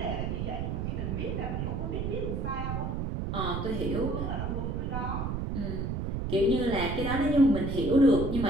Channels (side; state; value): right; noise; rumble, 2 dB below the sound